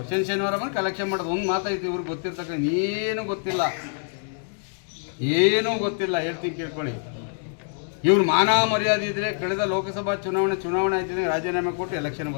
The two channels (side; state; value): right; silent; 62 dB below the other